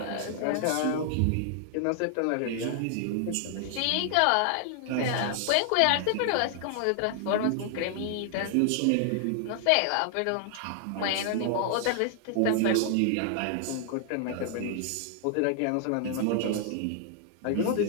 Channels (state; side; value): different; both; correlation 0.00